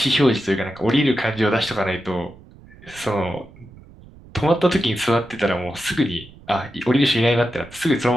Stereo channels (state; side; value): noise; right; rumble, 22 dB below the sound